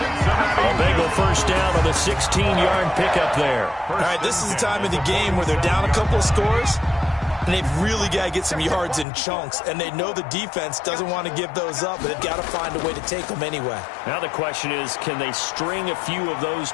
Bengal 1st down on the 16-yard pickup there. All right, this is the time of the game where they're down a couple of scores, and they've really got to get some yards in chunks, and they know the defense doesn't want to give those up, but they've got to find a way to take them anyway. Now the question is, can they string a few of those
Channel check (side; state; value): right; drops out; at 9.1 s